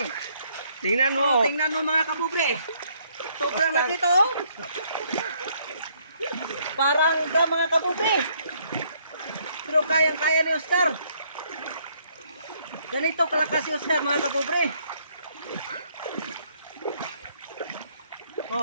Tingnan mo. So, tingnan mo mga kapobre. Sobrang laki to. Parang drum mga kapobre. Pero kayang-kaya ni Oscar. Ganito kalakas si Oscar mga kapobre.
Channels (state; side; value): inverted; both; correlation -0.67